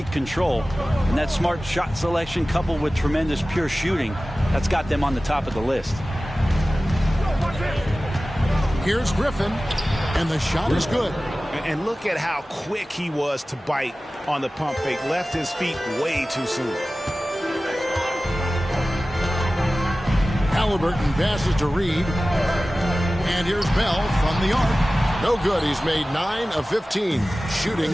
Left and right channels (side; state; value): both; normal; correlation 0.96